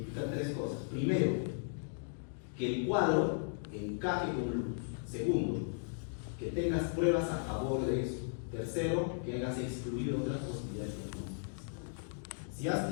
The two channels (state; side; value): silent; right; digital silence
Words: tres cosas. Primero, que el cuadro encaje con lupus. Segundo, que tengas pruebas a favor de eso. Tercero, que hayas excluido otras posibilidades diagnósticas. Si has